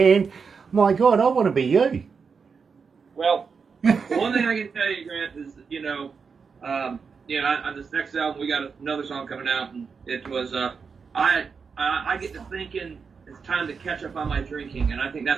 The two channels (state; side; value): quieter; left; 5.6 dB